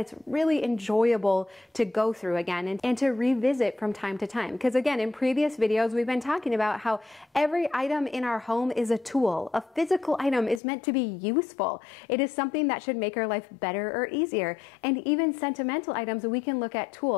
really enjoyable to go through again and to revisit from time to time. Because again, in previous videos, we've been talking about how every item in our home is a tool. A physical item is meant to be useful. It is something that should make our life better or easier. And even sentimental items, we can look at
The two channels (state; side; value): drops out; right; at 10.6 s